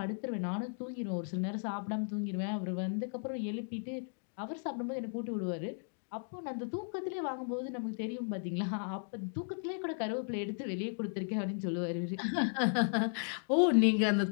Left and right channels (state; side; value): silent; right; 54 dB below the other